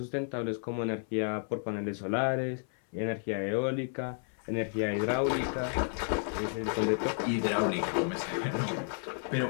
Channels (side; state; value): right; silent; 56 dB below the other